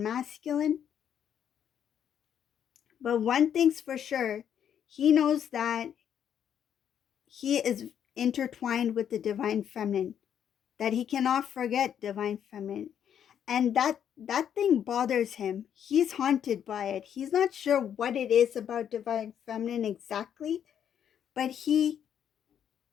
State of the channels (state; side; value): quieter; right; 9.0 dB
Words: masculine. But one thing's for sure, he knows that he is intertwined with the divine feminine, that he cannot forget divine feminine. And that thing bothers him. He's haunted by it. He's not sure what it is about divine feminine exactly, but he